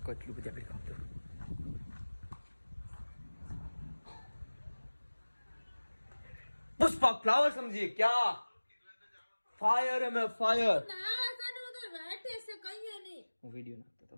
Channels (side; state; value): both; inverted; correlation -1.00